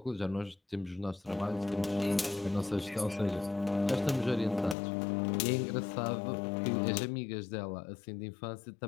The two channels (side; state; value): right; drops out; at 4.8 s